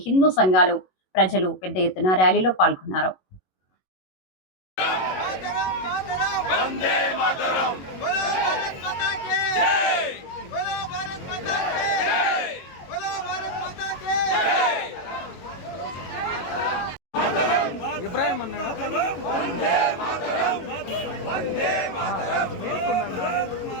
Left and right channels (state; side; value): late; right; 22 ms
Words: హిందూ సంఘాలు, ప్రజలు పెద్ద ఎత్తున ర్యాలీలో పాల్గొన్నారు.